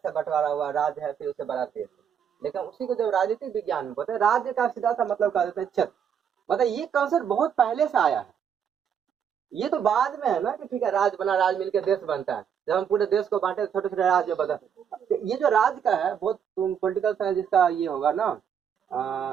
बंटवारा हुआ राज्य है, फिर उसे बड़ा देश। लेकिन उसी को जब राजनीतिक विज्ञान में बोलते हैं, राज्य का सीधा सा मतलब कह देते हैं क्षेत्र। मतलब ये कॉन्सेप्ट बहुत पहले से आया है। ये तो बाद में है ना कि ठीक है राज्य बना, राज्य मिलकर देश बनता है। जब हम पूरे देश को बांटे छोटे छोटे राज्य बता, ये जो राज्य का है बहुत, तुम पॉलिटिकल साइंस जिसका ये होगा ना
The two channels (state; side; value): quieter; left; 8.0 dB